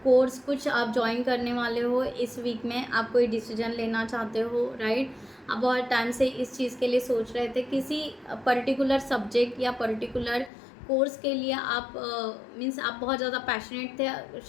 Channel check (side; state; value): right; drops out; at 10.5 s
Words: course कुछ आप ज्वाइन करने वाले हो इस वीक में, आप कोई डिसीजन लेना चाहते हो, राइट। आप बहुत टाइम से इस चीज़ के लिए सोच रहे थे, किसी पर्टिकुलर सब्जेक्ट या पर्टिकुलर कोर्स के लिए आप मीन्स आप बहुत ज़्यादा पैशनेट थे,